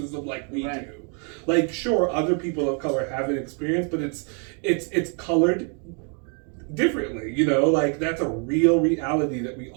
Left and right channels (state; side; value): quieter; left; 38.9 dB